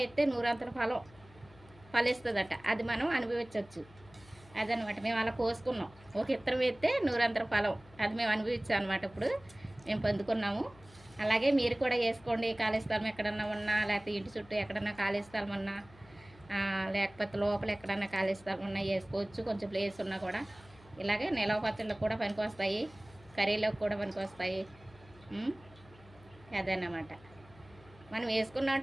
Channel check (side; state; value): left; noise; hum, 24 dB below the sound